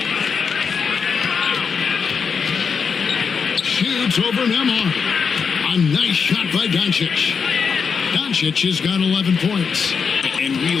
Shoots over Nembhard. A nice shot by Doncic. Doncic has got 11 points. And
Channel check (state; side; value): quieter; right; 6.0 dB